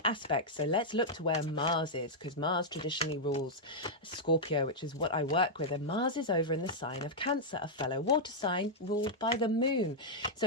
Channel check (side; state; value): both; normal; correlation -0.06